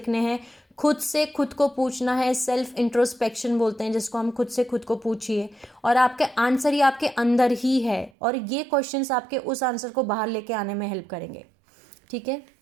हैं, खुद से खुद को पूछना है, सेल्फ इंट्रोस्पेक्शन बोलते हैं जिसको, हम खुद से खुद को पूछिए और आपके आंसर ही आपके अंदर ही है और ये क्वेश्चंस आपके उस आंसर को बाहर लेके आने में हेल्प करेंगे, ठीक है।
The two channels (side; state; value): left; drops out; at 8.1 s